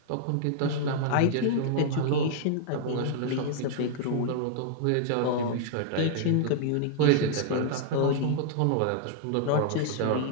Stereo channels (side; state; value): both; different; correlation -0.01